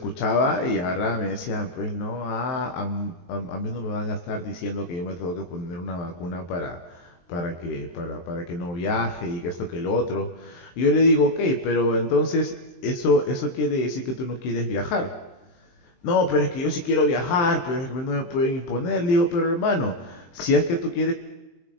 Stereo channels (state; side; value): late; right; 23 ms